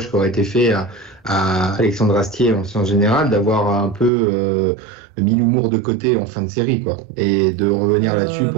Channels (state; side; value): drops out; left; at 4.1 s